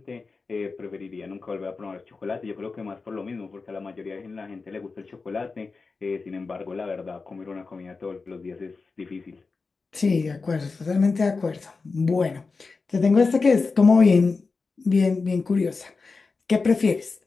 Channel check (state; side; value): quieter; right; 4.3 dB